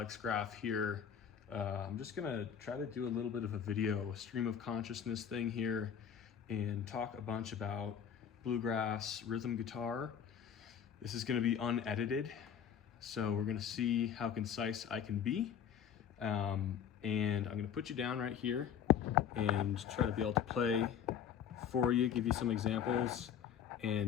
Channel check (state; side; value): quieter; right; 8.4 dB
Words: Graff here. I'm just gonna try to do a little bit of a video, a stream of consciousness thing here, and talk a bunch about bluegrass rhythm guitar. This is gonna be unedited, so we're gonna see how concise I can be. And I'm gonna put you down right here and try to be able to play for you, give you some examples,